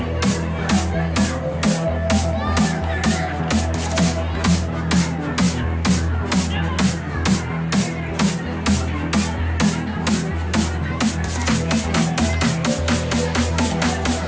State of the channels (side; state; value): both; identical; correlation 1.00